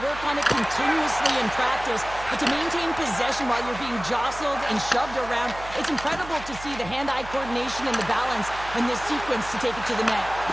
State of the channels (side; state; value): right; noise; hum, 14 dB below the sound